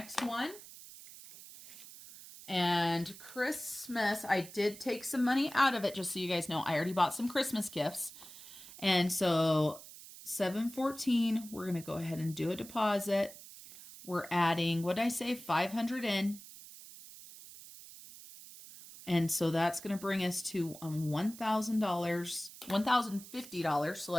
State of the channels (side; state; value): right; noise; hiss, 16 dB below the sound